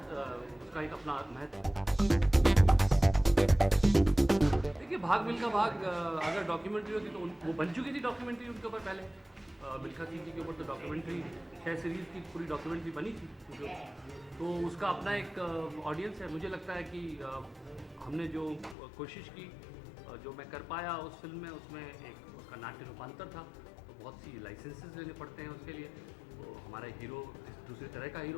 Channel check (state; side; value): drops out; right; at 18.8 s